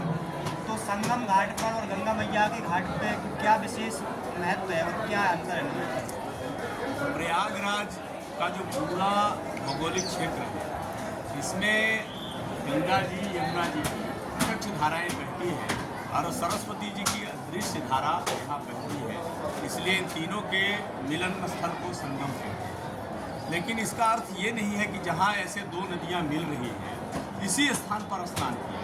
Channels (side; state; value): both; identical; correlation 1.00